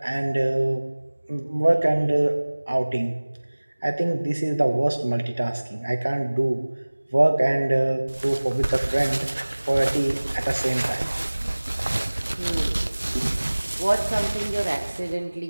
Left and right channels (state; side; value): inverted; both; correlation -1.00